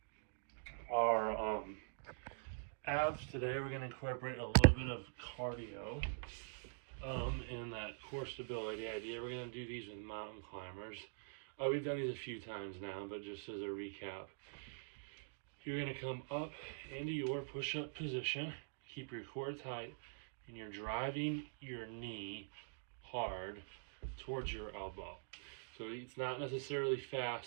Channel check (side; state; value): left; silent; digital silence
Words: our abs today, we're going to incorporate a little bit of cardio in that core stability idea. We're going to do these with mountain climbers. We've done these a few times now, but just as a recap, you're going to come up into your push-up position, keep your core tight, and you're driving your knee hard towards your elbow. So it's not necessarily